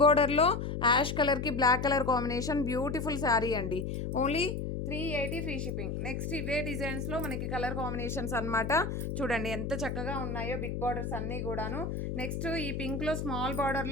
బోర్డర్లో యాష్ కలర్కి black colour combination, beautiful sari అండి. Only 380 free shipping. నెక్స్ట్ ఇవే డిజైన్స్లో మనకి కలర్ కాంబినేషన్స్ అనమాట. చూడండి ఎంత చక్కగా ఉన్నాయో బిగ్ బార్డర్స్ అన్నీ కూడాను. నెక్స్ట్ ఈ పింక్లో స్మాల్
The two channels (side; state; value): left; noise; hum, 3 dB below the sound